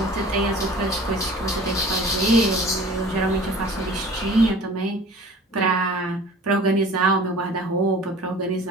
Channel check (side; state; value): both; normal; correlation 0.44